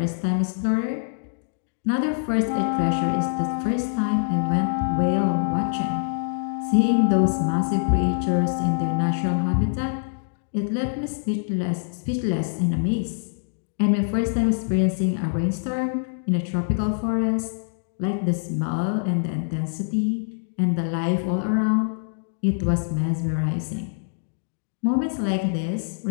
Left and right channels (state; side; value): silent; right; digital silence